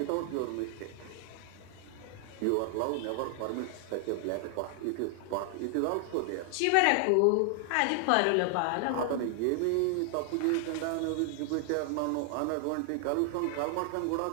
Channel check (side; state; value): both; different; correlation 0.00